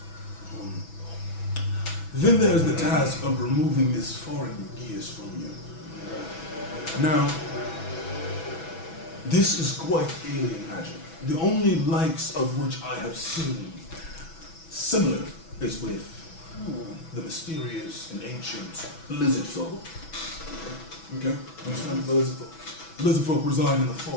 Then there's the task of removing this foreign gears from you. Now, this is quite alien magic. The only likes of which I have seen similar is with the mysterious and ancient lizard folk. Okay? Understand the lizard folk? Lizard folk reside in the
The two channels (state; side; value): late; right; 6.1 ms